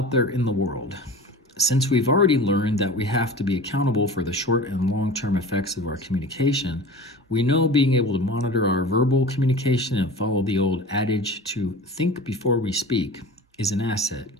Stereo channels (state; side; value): normal; both; correlation 0.36